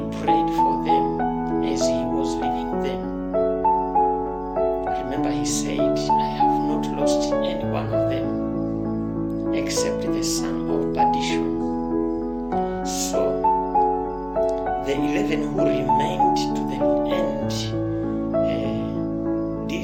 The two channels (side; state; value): both; identical; correlation 1.00